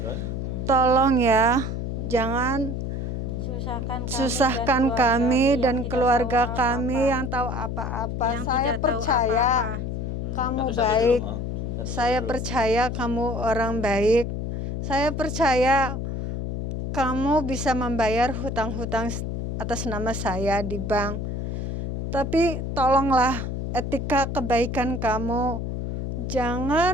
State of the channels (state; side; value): noise; left; hum, 3 dB below the sound